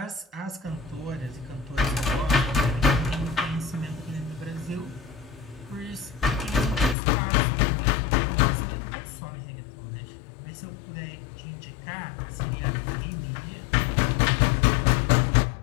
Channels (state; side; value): drops out; right; at 7.0 s